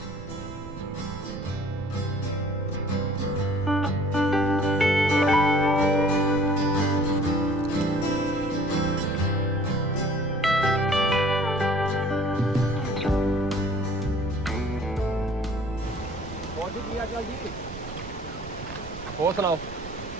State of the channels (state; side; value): noise; right; rumble, 13 dB below the sound